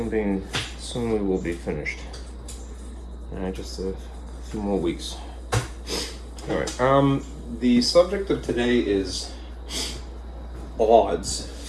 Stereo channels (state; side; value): identical; both; correlation 1.00